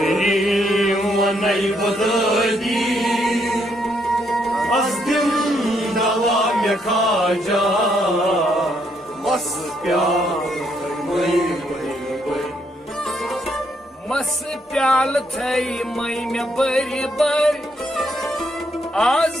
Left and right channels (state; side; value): normal; both; correlation 0.74